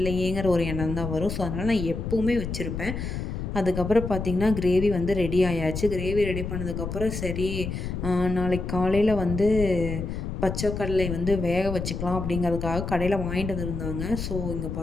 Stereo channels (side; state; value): left; noise; rumble, 5 dB below the sound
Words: ஒரு எண்ணம் தான் வரும். ஸோ அதனால் நான் எப்போவுமே வச்சுருப்பேன். அதுக்கப்புறம் பார்த்திங்கன்னா கிரேவி வந்து ரெடி ஆயாச்சு. கிரேவி ரெடி பண்ணதுக்கப்புறம் சரி நாளைக்கு காலையில் வந்து பச்சை கடலை வந்து வேக வச்சுக்கலாம் அப்படிங்கிறதுக்காக கடையில் வாங்கிட்டு வந்துருந்தாங்க. ஸோ இங்கே